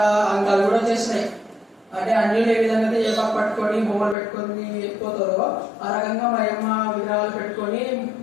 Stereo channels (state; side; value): drops out; right; at 4.2 s